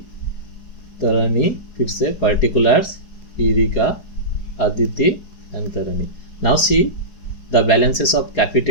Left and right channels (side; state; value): right; late; 4.8 ms